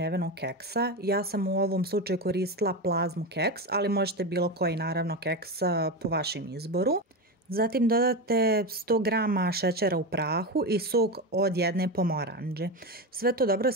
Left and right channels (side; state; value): both; normal; correlation 0.18